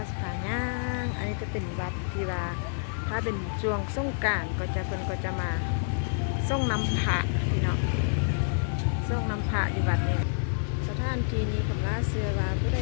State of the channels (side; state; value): right; silent; digital silence